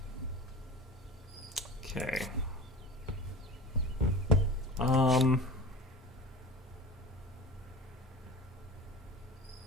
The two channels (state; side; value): normal; both; correlation 0.35